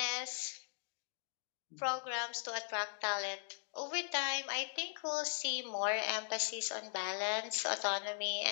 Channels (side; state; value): right; silent; digital silence